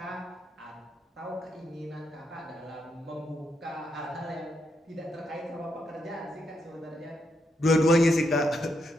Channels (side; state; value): both; normal; correlation 0.80